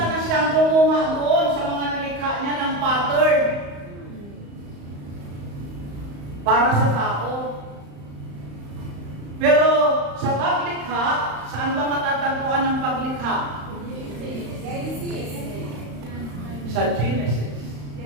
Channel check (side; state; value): left; late; 35 ms